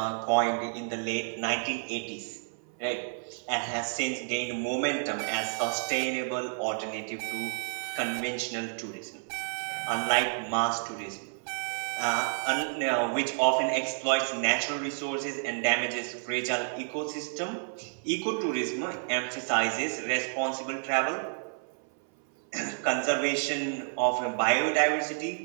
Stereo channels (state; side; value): silent; left; 58 dB below the other